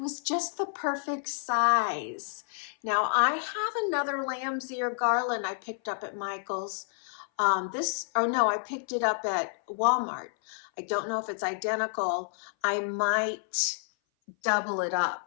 just the perfect size. Now I have another lamb's ear garland I picked up at Michael's. No, I picked it up at Walmart. I don't know if it's identical. I might double it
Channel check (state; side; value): silent; right; 57 dB below the other